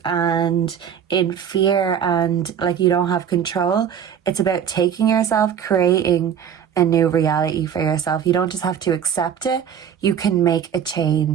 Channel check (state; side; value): quieter; left; 8.4 dB